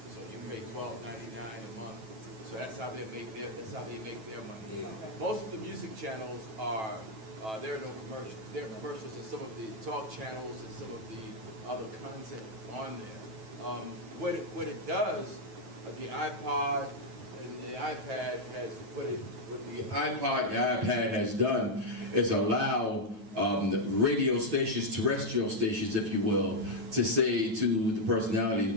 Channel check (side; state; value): left; late; 9.2 ms